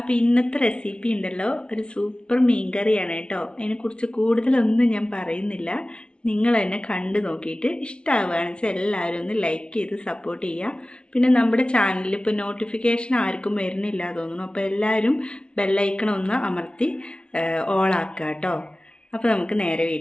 ഇന്നത്തെ റെസിപ്പി ഉണ്ടല്ലോ ഒരു സൂപ്പർ മീൻകറിയാണ് കേട്ടോ. അതിനെക്കുറിച്ച് കൂടുതലൊന്നും ഞാൻ പറയുന്നില്ല. നിങ്ങൾ തന്നെ കണ്ടു നോക്കിയിട്ട് ഇഷ്ടമാവുകയാണെന്ന് വെച്ചാൽ എല്ലാവരും ഒന്ന് ലൈക്ക് ചെയ്ത് സപ്പോർട്ട് ചെയ്യുക. പിന്നെ നമ്മുടെ ചാനലിൽ ഇപ്പോൾ നോട്ടിഫിക്കേഷൻ ആർക്കും വരുന്നില്ല തോന്നുന്നു. അപ്പോൾ എല്ലാവരും ബെല്ലൈക്കണം ഒന്ന് അമർത്തി ഓളാക്കുക കേട്ടോ. അപ്പോൾ നമുക്ക് നേരെ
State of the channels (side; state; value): right; late; 0.057 ms